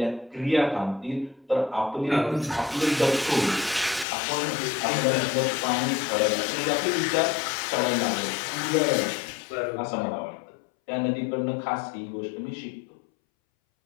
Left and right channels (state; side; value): drops out; right; at 4.0 s